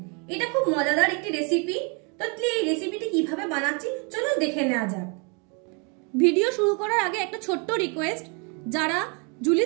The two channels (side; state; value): left; quieter; 34.9 dB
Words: এটা খুব মজাদার একটি রেসিপি। তো এই রেসিপিটি কিভাবে বানাচ্ছি চলুন দেখে নেওয়া যাক। ভিডিও শুরু করার আগে একটা ছোট্ট রিকোয়েস্ট, যারা